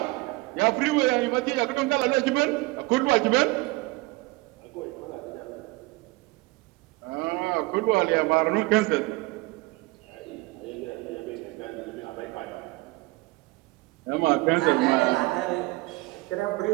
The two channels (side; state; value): left; quieter; 22.7 dB